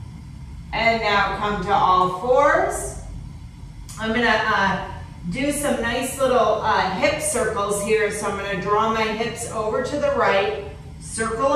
And now come to all fours. I'm gonna do some nice little hip circles here. So I'm gonna draw my hips over to the right,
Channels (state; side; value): identical; both; correlation 1.00